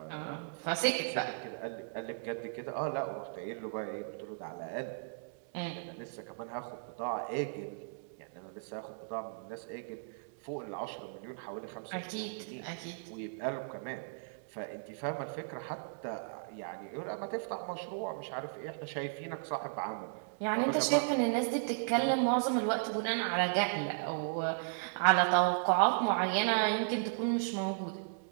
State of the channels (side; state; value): left; silent; digital silence